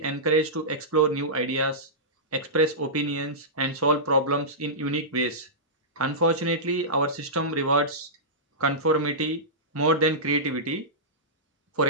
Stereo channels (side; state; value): both; normal; correlation -0.15